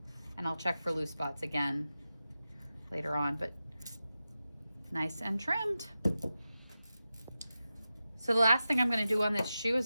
and I'll check for loose spots again later on, but nice and trimmed. So the last thing I'm going to do on this shoe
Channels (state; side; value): inverted; both; correlation -0.93